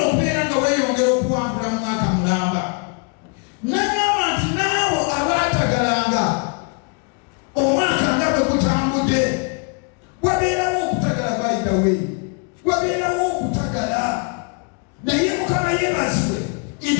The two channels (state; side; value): quieter; right; 36.3 dB